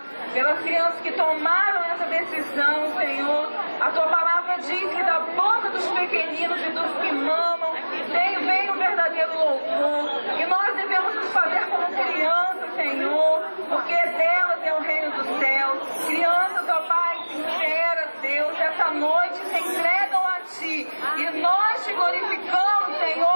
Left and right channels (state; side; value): inverted; both; correlation -1.00